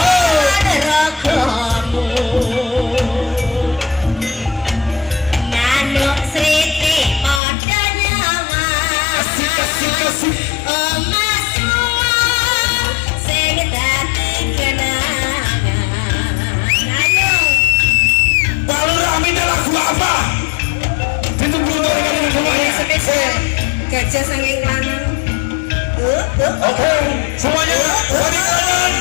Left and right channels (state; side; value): drops out; right; at 7.4 s